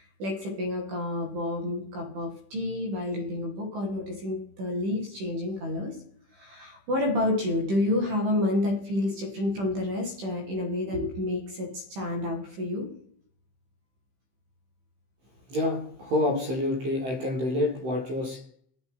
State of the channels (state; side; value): late; left; 15 ms